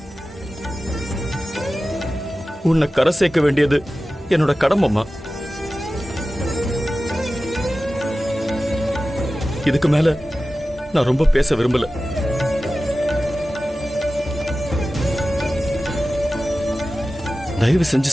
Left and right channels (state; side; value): normal; both; correlation 0.95